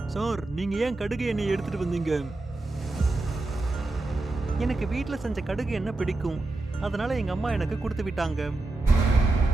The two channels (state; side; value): quieter; left; 3.0 dB